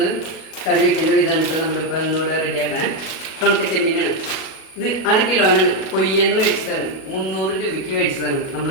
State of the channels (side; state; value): right; late; 37 ms